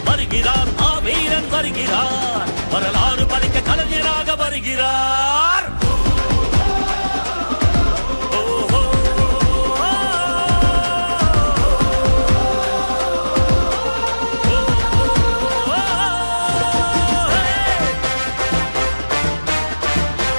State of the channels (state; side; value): inverted; both; correlation -1.00